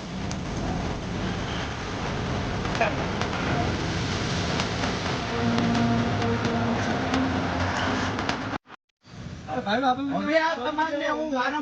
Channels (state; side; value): identical; both; correlation 1.00